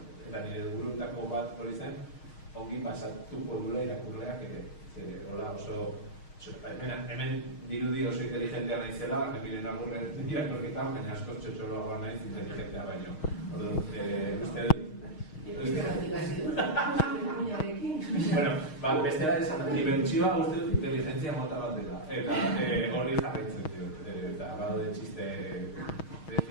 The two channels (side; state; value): right; late; 6.4 ms